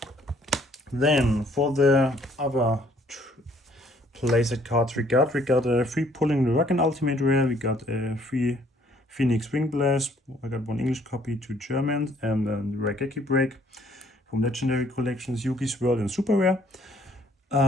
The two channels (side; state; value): both; normal; correlation 0.62